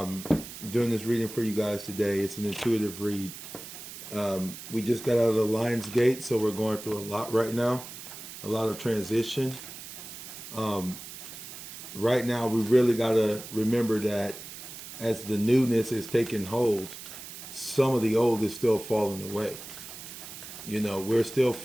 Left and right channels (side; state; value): right; noise; hiss, 12 dB below the sound